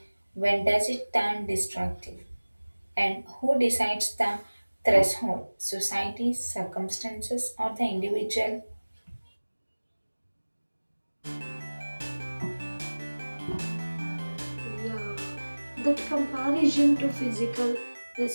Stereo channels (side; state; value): both; inverted; correlation -1.00